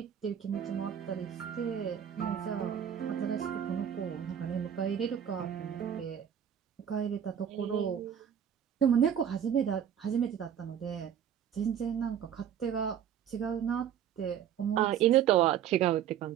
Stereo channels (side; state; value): left; quieter; 9.2 dB